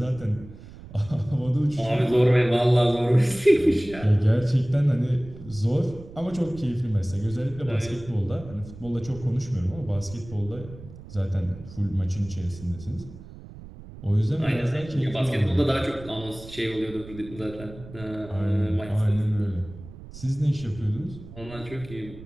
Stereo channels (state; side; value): noise; right; rumble, 16 dB below the sound